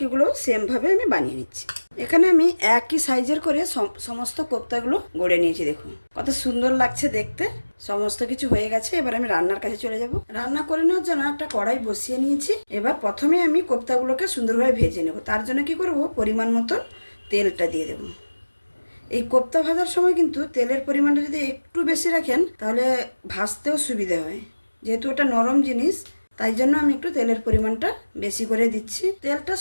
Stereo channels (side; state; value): both; inverted; correlation -1.00